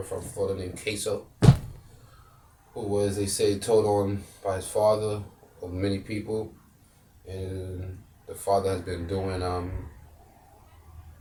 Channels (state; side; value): identical; both; correlation 1.00